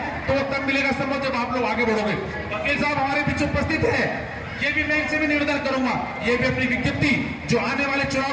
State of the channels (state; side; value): identical; both; correlation 1.00